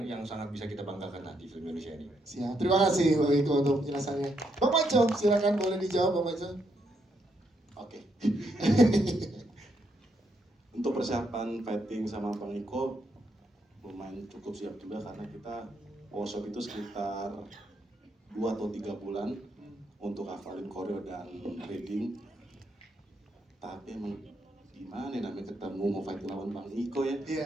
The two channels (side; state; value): both; normal; correlation 0.77